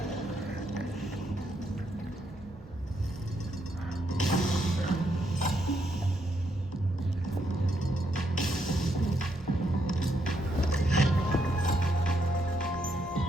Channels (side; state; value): both; normal; correlation 0.77